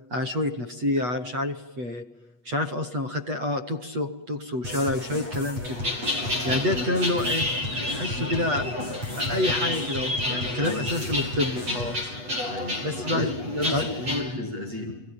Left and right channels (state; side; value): late; left; 8.2 ms